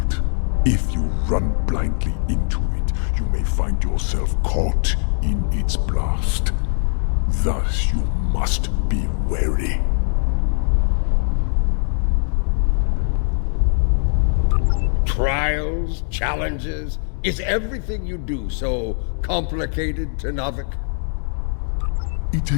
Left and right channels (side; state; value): right; silent; 65 dB below the other